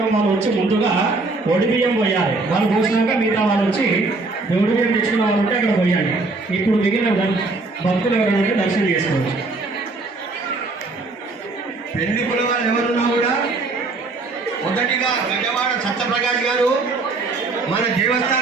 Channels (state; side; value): quieter; left; 3.5 dB